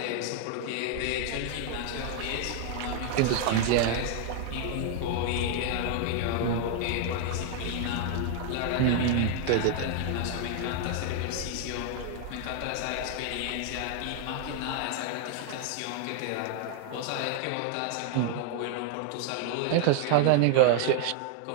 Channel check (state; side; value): different; both; correlation 0.00